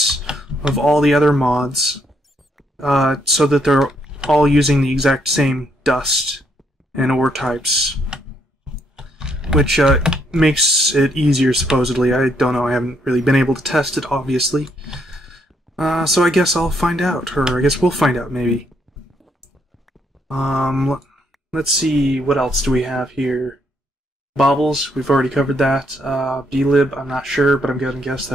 of all the other mods so that they're all using the exact same dust and ore types, which makes it easier, supposedly. I don't know, I haven't really been able to test it, obviously. So I guess I'll find out, or I guess we'll find out, maybe. Let's see, what else do we have here? Baubles, we've already covered that. BdLib, I'm not sure, but I'm going to guess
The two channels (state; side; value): normal; both; correlation 0.73